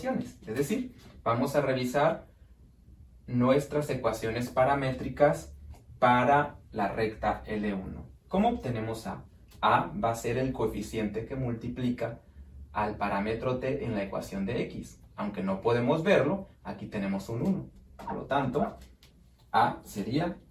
Es decir, vamos a revisar nuestras ecuaciones paramétricas para la recta L1. ¿Cómo obtenemos A? A va a ser el coeficiente que multiplica al parámetro t en la ecuación de x. Aunque no podemos verlo, aquí tenemos un 1. Por lo tanto, A sería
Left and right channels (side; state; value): both; identical; correlation 1.00